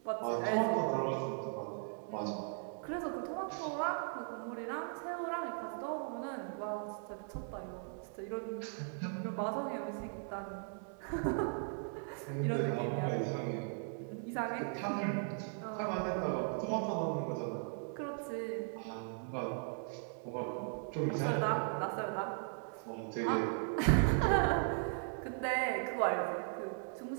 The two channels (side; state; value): left; silent; 52 dB below the other